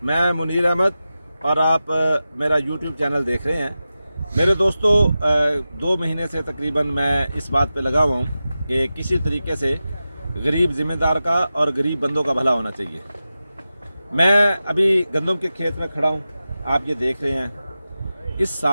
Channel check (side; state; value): both; inverted; correlation -0.93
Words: मैं मुनीर अहमद और आप मेरा यूट्यूब चैनल देख रहे हैं। मेरे दोस्तों, 2 महीने से तकरीबन मैं इस बात पे लगा हुआ हूँ कि किसी तरीके से गरीब ज़िम्मेदार का और गरीब बंदों का भला होना चाहिए। मैं अभी गंदम के खेत में खड़ा हूँ, आप ये देख रहे हैं। इस